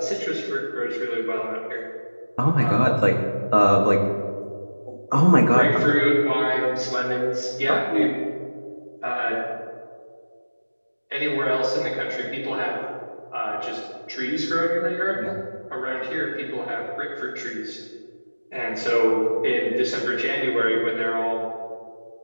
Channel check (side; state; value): both; inverted; correlation -1.00